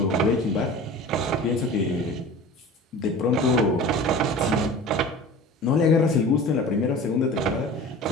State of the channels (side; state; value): both; normal; correlation 0.38